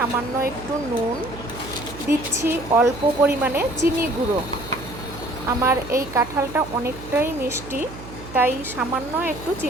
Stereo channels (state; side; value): noise; right; hum, 14 dB below the sound